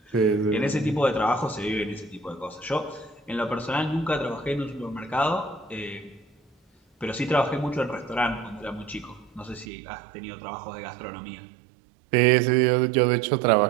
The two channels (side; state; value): left; drops out; at 9.7 s